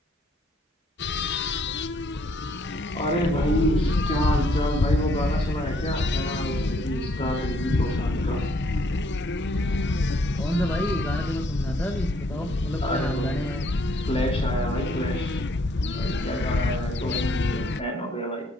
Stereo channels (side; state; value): both; normal; correlation 0.67